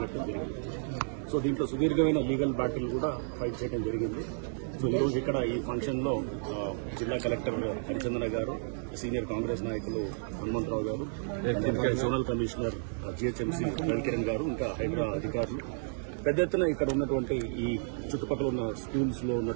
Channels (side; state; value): left; silent; digital silence